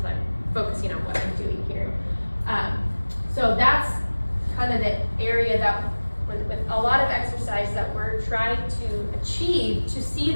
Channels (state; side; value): inverted; both; correlation -1.00